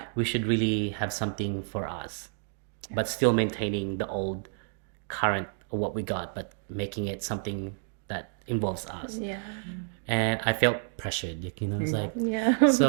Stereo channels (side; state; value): left; silent; 57 dB below the other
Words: We should really have something for us, but still maintaining the old current of what we got, but making it something that involves us. Yeah. And I felt pressured, you know, it's like, Yeah.